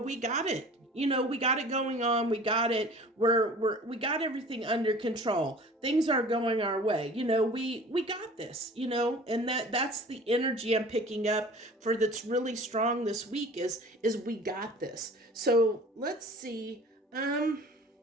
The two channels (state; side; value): normal; both; correlation 0.45